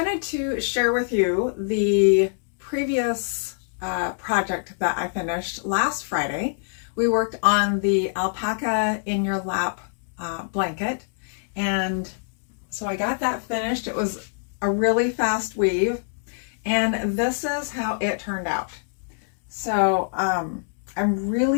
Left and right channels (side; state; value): right; silent; 62 dB below the other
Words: to share with you the previous project that I finished last Friday. We worked on the alpaca in your lap blanket, and so I got that finished. It was a really fast weave, and this is how it turned out. So I'm